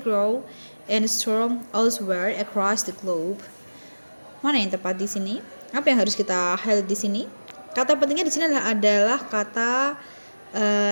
and storm elsewhere across the globe. Mana yang tepat di sini? Apa yang harus kita highlight di sini? Kata pentingnya di sini adalah kata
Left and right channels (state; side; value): inverted; both; correlation -1.00